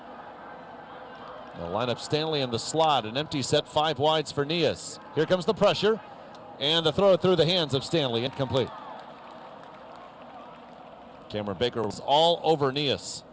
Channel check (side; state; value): both; identical; correlation 1.00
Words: They'll line up Stanley in the slot, an empty set, 5 wides for Nias. Here comes the pressure, and the throw through the hands of Stanley, incomplete. Cameron Baker was all over Nias.